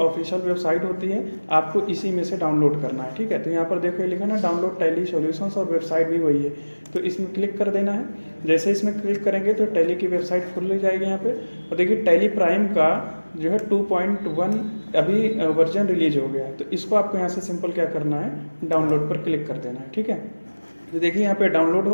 वेबसाइट होती है, आपको इसी में से डाउनलोड करना है। ठीक है, तो यहाँ पर देखो ये लिखा ना डाउनलोड टैली सॉल्यूशंस, और वेबसाइट भी वही है। तो इसमें क्लिक कर देना है। जैसे इसमें क्लिक करेंगे तो टैली की वेबसाइट खुल जाएगी यहाँ पे। और देखिए टैली प्राइम का जो है 2.1 अभी वर्जन रिलीज हो गया है। तो इसको आपको यहाँ से सिंपल क्या करना है, डाउनलोड पर क्लिक कर देना है। ठीक है, तो देखिए यहाँ पे डाउनलोड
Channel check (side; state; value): both; inverted; correlation -1.00